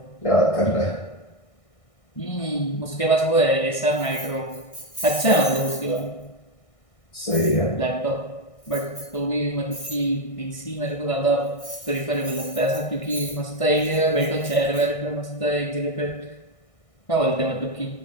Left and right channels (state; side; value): late; right; 1.6 ms